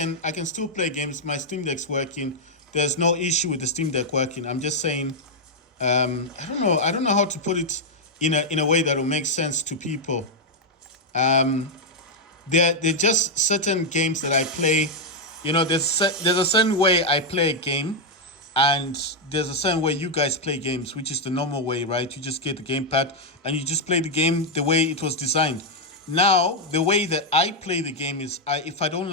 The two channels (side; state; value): both; normal; correlation -0.01